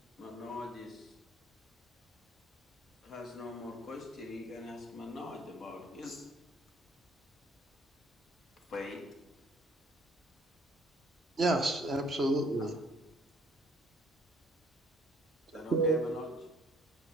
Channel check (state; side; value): normal; both; correlation 0.60